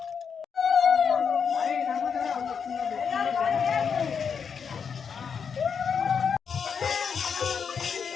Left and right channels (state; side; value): quieter; right; 6.5 dB